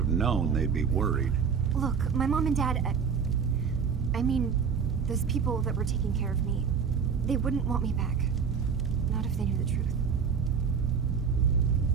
known they'd be worried. Look, my mom and dad... I mean, those people that were taking care of me, they wouldn't want me back. Not if they knew the truth.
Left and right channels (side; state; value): left; quieter; 6.5 dB